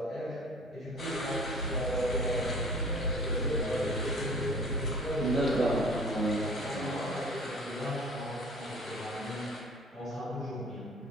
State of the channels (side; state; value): both; normal; correlation 0.47